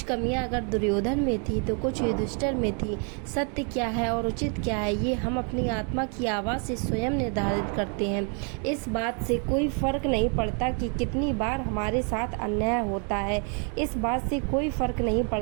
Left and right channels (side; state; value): left; quieter; 39.4 dB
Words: कमियां अगर दुर्योधन में थी तो कुछ युधिष्ठिर में थी। सत्य क्या है और उचित क्या है, ये हम अपनी आत्मा की आवाज़ से स्वयं निर्धारित करते हैं। इस बात से कोई फर्क नहीं पड़ता कि कितनी बार हमारे साथ अन्याय होता है। इस बात से कोई फर्क नहीं